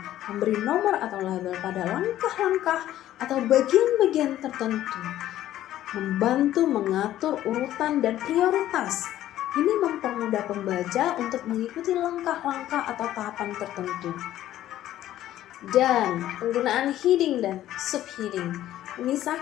memberi nomor atau label pada langkah-langkah atau bagian-bagian tertentu, membantu mengatur urutan dan prioritas. Ini mempermudah pembaca untuk mengikuti langkah-langkah atau tahapan tertentu. Dan penggunaan heading dan subheading,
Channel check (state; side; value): quieter; right; 13.1 dB